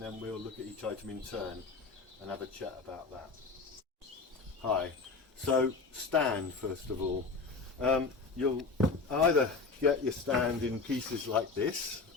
we'll look at each item in turn and have a chat about that. Hi, so stand first of all. You'll either get your stand in pieces like this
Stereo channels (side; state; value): right; quieter; 4.2 dB